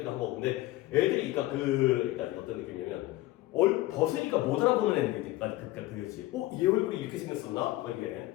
하고. 근데 애들이 그러니까 어떤 느낌이냐면 벗으니까 못 알아보는 애들까지 그거지. 얘 얼굴이 이렇게 생겼었나? 뭐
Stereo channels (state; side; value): quieter; right; 17.3 dB